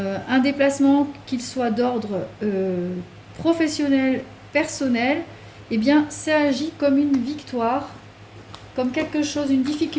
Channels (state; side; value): identical; both; correlation 1.00